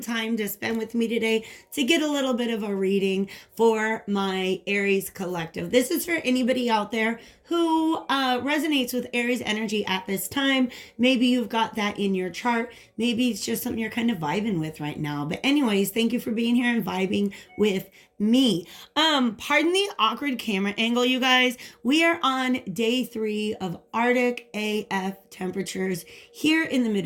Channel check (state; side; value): identical; both; correlation 1.00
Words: to spend with me today to get a little bit of a reading for my Aries collective. This is for anybody out there who resonates with Aries energy at this time. Maybe you've got that in your chart. Maybe it's just something you're kind of vibing with right now. But anyways, thank you for being here and vibing with me. Pardon the awkward camera angle, you guys. We are on day 3 of Arctic AF temperatures here in the